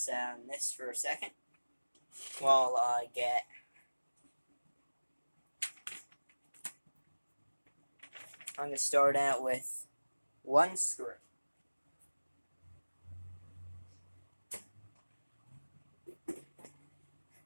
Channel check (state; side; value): inverted; both; correlation -1.00